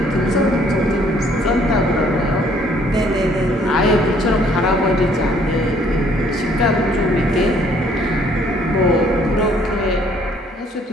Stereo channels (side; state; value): both; normal; correlation 0.62